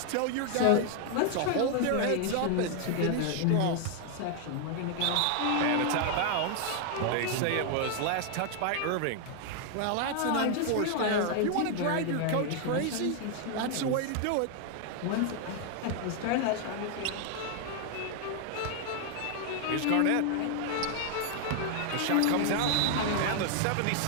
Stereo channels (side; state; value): both; different; correlation 0.00